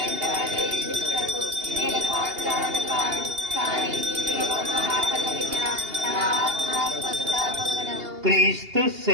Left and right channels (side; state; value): left; late; 2.8 ms